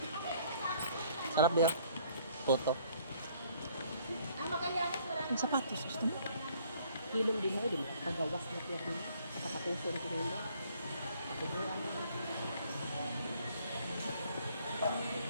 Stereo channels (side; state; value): both; inverted; correlation -0.61